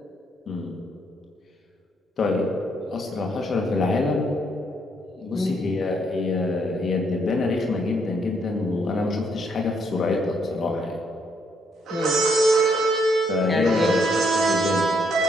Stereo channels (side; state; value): both; normal; correlation 0.72